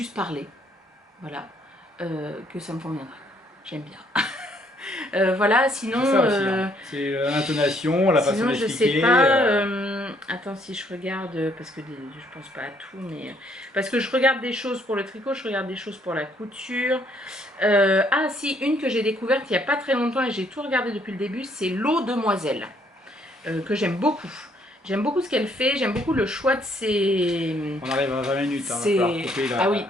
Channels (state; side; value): normal; both; correlation 0.67